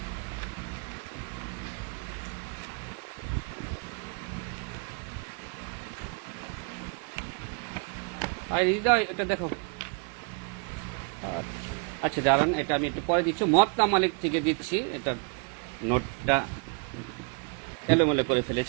এটা দেখো। আচ্ছা দাঁড়ান, এটা আমি একটু পরে দিচ্ছি। মুয়াত্তা মালিক থেকে দিচ্ছি, এটা নোটটা এলোমেলো করে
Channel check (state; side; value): quieter; left; 36.3 dB